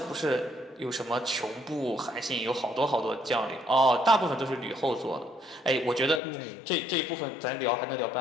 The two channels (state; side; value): drops out; right; at 6.2 s